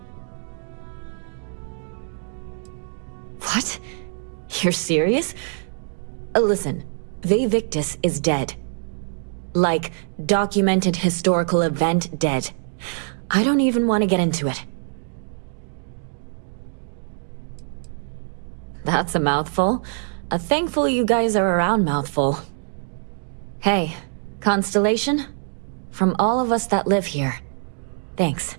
What? You're serious? Listen, Vivictus is dead. Like, documented historical event dead. I don't even want to get into it. That's a mouthful. A thankful you guys are around mouthful. Hey, Constellation? From all of us that live here, thanks.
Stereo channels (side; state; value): left; silent; digital silence